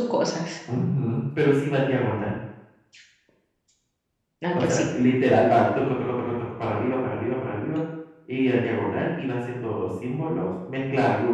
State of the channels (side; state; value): both; identical; correlation 1.00